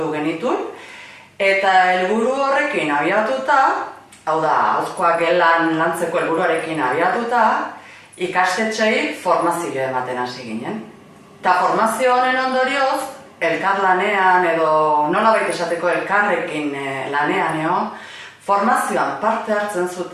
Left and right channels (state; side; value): identical; both; correlation 1.00